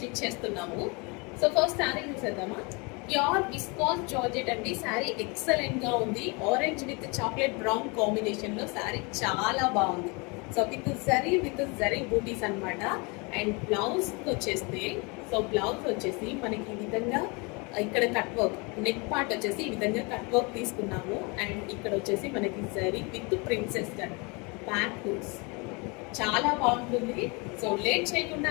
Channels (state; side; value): quieter; right; 29.6 dB